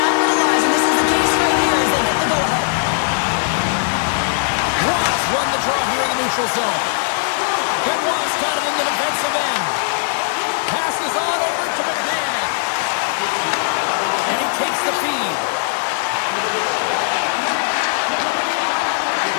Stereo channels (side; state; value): right; silent; digital silence